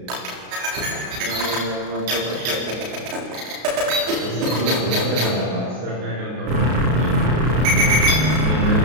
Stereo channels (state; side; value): late; left; 33 ms